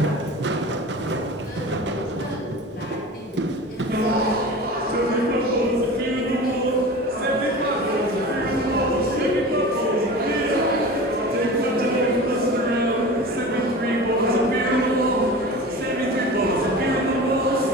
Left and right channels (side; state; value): both; normal; correlation 0.34